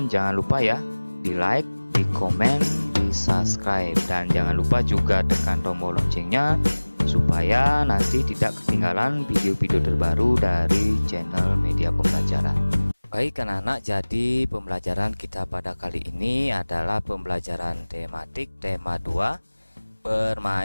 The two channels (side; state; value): both; inverted; correlation -1.00